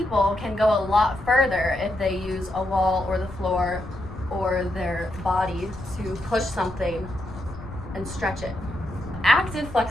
can go a lot further if they use a wall or the floor or their body to push something and stretch it. Active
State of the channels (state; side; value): noise; left; rumble, 14 dB below the sound